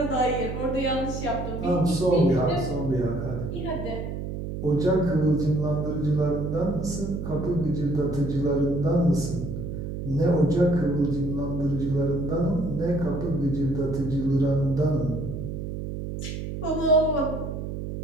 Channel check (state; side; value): noise; right; hum, 6 dB below the sound